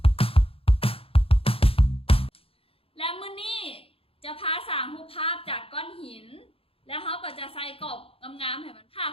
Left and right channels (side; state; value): right; late; 0.27 ms